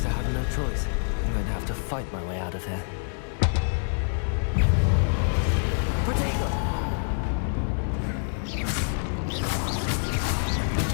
I have no choice. I'm going to have to fight my way out of here. Protego!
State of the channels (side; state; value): right; silent; 61 dB below the other